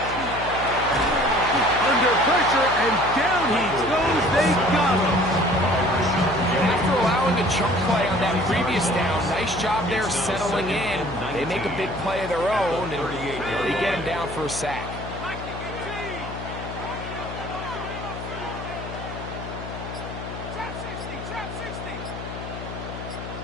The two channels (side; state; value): left; noise; hum, 9 dB below the sound